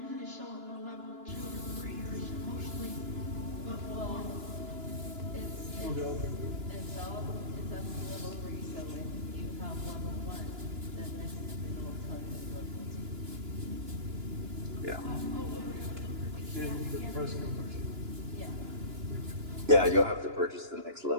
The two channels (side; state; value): left; late; 2.9 ms